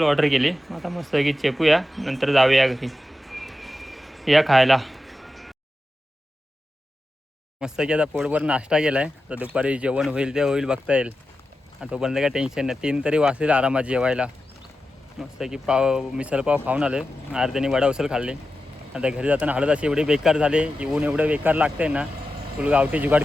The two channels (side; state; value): both; normal; correlation 0.91